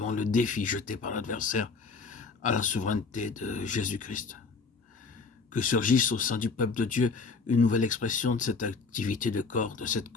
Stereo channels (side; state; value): right; quieter; 4.7 dB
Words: le défi jeté par l'adversaire à la souveraineté de Jésus-Christ. Que surgisse au sein du peuple de Dieu une nouvelle expression de cette activité de corps, de cette